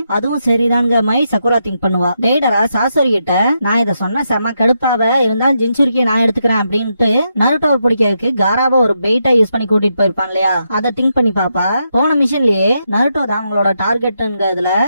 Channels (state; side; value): inverted; both; correlation -0.82